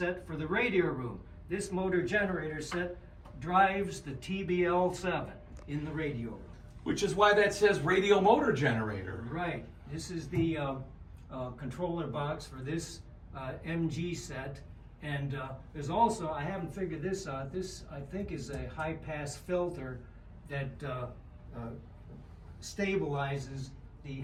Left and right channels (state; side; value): identical; both; correlation 1.00